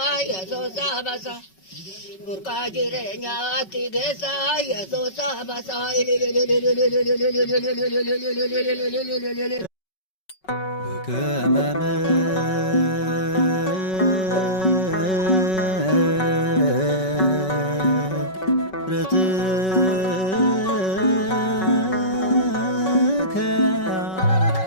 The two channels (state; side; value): late; right; 5.3 ms